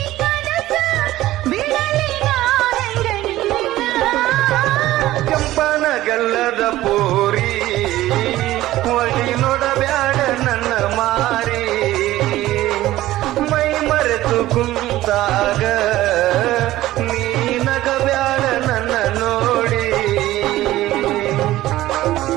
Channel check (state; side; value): quieter; left; 15.6 dB